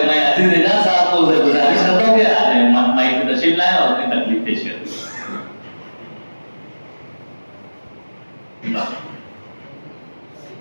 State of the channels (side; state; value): both; inverted; correlation -1.00